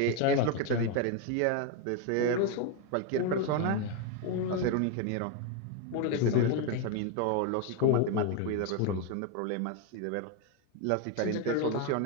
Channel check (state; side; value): different; both; correlation 0.01